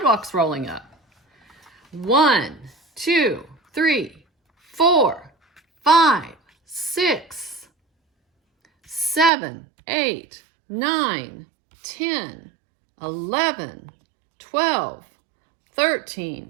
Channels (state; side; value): drops out; left; at 9.3 s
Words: rolling up. 1, 2, 3, 4, 5, 6, 7, 8, 9, 10, 11, 12,